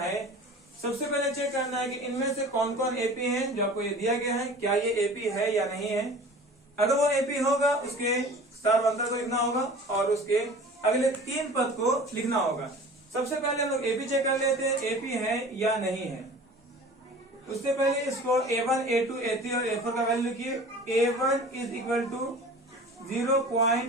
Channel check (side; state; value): both; normal; correlation 0.41